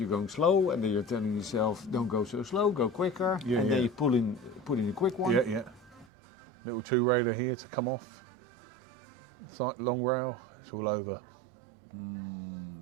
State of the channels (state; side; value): drops out; left; at 6.1 s